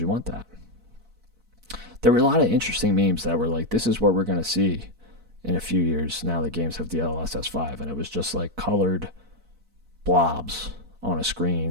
want that? There were a lot of interesting memes that were like, this is what we're going to see in a few years now that games have DLSS 5. And it was just like colored blobs on a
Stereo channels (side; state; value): left; late; 4.5 ms